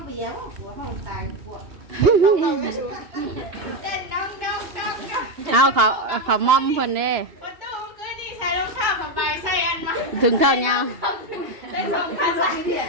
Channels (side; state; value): left; late; 2.8 ms